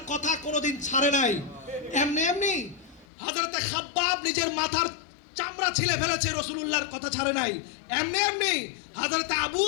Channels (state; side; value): drops out; right; at 3.1 s